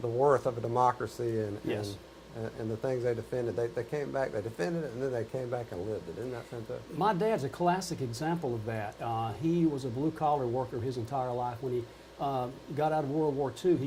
worth of a democracy and the things they defended. They came back, they defended it, and then they came back and lived it. Isn't that fantastic? My dad's a classic example of that. He was a blue-collar worker his entire life. When he got out of World War II,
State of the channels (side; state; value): both; identical; correlation 1.00